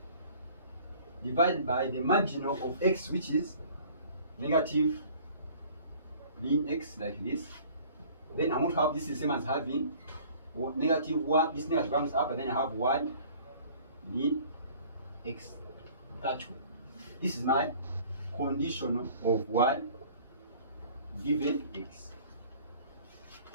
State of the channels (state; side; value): inverted; both; correlation -0.51